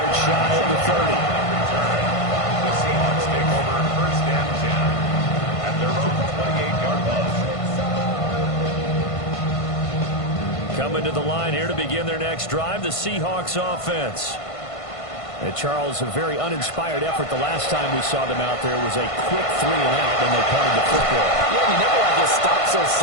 shy of the 30. The Seahawks take over first and 10 at their own 28-yard line. Coming to the line here to begin their next drive, the Seahawks offense. And Charles, a very uninspired effort the last time we saw them out there was a quick 3 and out when they punted the football. Yeah, you never want to get stopped so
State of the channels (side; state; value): right; late; 1.5 ms